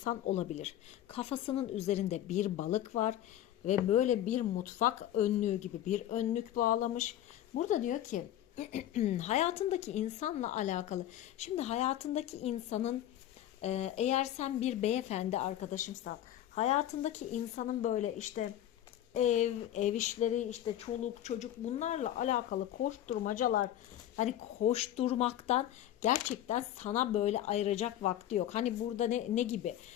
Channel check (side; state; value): right; quieter; 12.2 dB